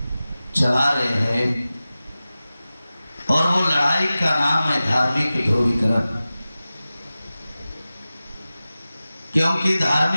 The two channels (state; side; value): inverted; both; correlation -0.96